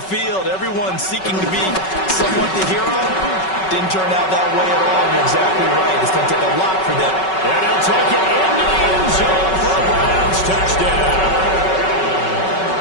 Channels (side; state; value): right; late; 5.3 ms